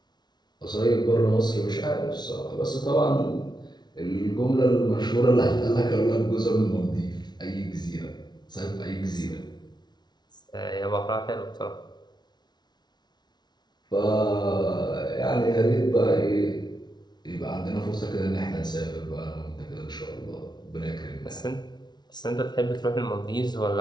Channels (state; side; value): late; right; 0.20 ms